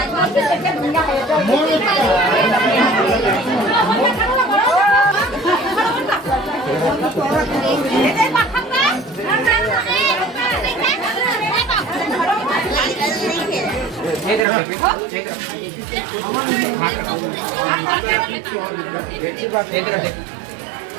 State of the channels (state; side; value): drops out; left; at 14.5 s